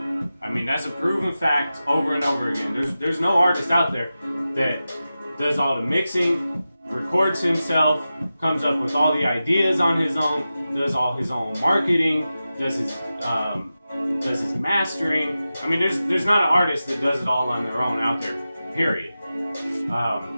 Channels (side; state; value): both; inverted; correlation -0.93